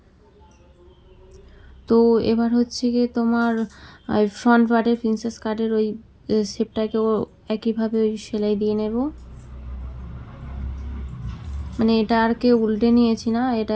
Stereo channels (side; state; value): both; identical; correlation 1.00